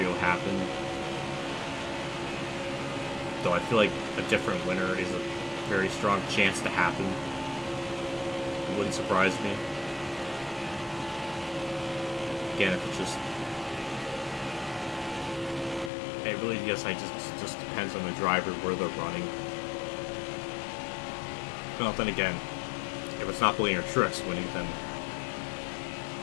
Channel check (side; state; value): right; drops out; at 15.9 s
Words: happened. Though I feel like a different winner is a very strong chance to happen. It wouldn't surprise me. Again, if it's just... It really, yes, just depends on the driver, where they're running. Well, then again, if it's not Blaine or Trix winning, then